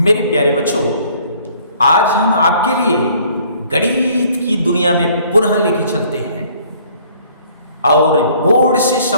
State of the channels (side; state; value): both; inverted; correlation -0.58